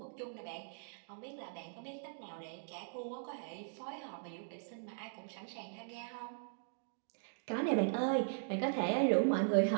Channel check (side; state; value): left; silent; digital silence